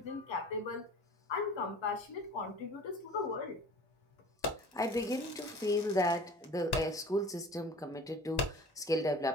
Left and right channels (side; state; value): both; normal; correlation 0.43